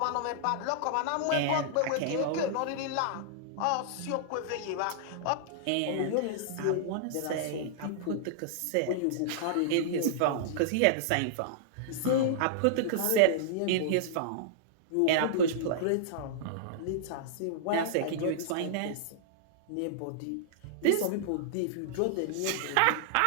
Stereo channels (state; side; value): different; both; correlation -0.01